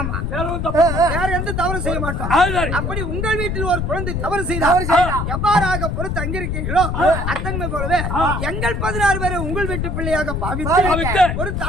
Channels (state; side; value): noise; left; rumble, 2 dB below the sound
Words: தப்பு வேற எந்த தவறு செய்ய மாட்டோம். அப்படி உங்கள் வீட்டில் ஒரு குழந்தை தவறு செய்தால் எவ்வாறாக பொறுத்து அங்கிருக்கீர்களோ அத்தன்மை போலவே எங்கள் 16 பேரை உங்கள் வீட்டு பிள்ளையாக பாவித்து ஒரு